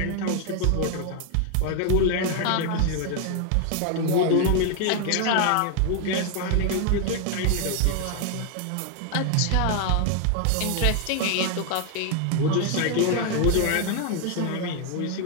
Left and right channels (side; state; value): both; different; correlation 0.00